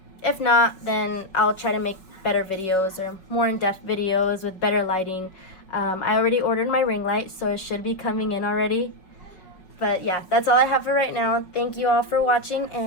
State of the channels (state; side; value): late; right; 5.5 ms